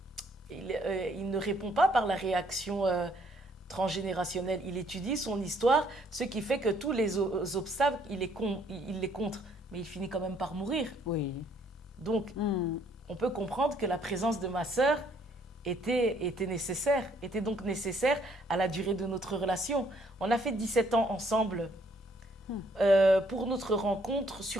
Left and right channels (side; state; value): both; normal; correlation 0.66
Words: répond pas par la réaction transgénérationnelle. Il étudie son histoire, ce qui fait que tous les obstacles, il les contre. Mais il finit quand même par mourir. Oui. Donc, on peut comprendre que la présence de ma sœur était donc nécessaire à la durée de notre relation. On a fait 17 ans ensemble pour notre rencontre